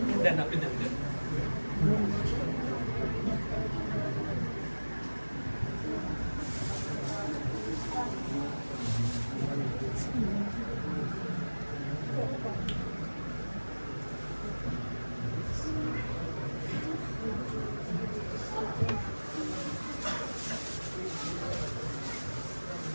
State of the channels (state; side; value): inverted; both; correlation -1.00